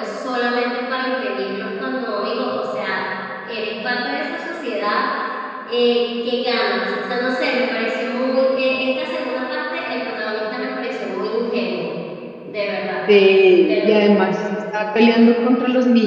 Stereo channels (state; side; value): identical; both; correlation 1.00